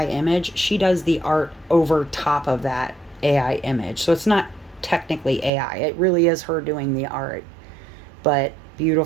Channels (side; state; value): left; drops out; at 5.5 s